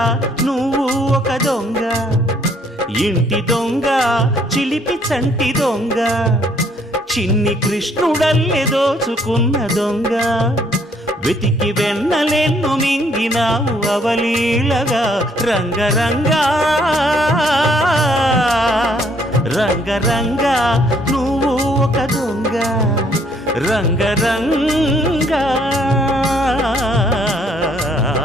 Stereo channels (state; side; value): normal; both; correlation 0.65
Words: నువ్వు ఒక దొంగ, ఇంటి దొంగ చిలిపి చంటి దొంగ, చిన్ని కృష్ణుడల్లే దోచుకున్న దొంగ, వెతికి వెన్నలెన్ను మింగినావు అవలీలగా. రంగరంగ రంగరంగ నువ్వు ఒక దొంగ, రంగరంగ.